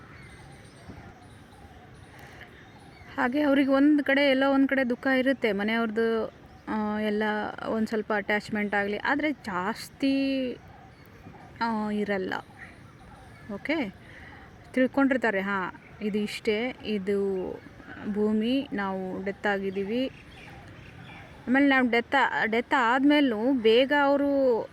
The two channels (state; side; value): identical; both; correlation 1.00